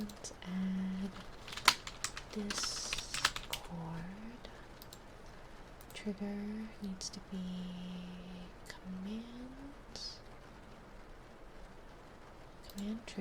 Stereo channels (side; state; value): both; identical; correlation 1.00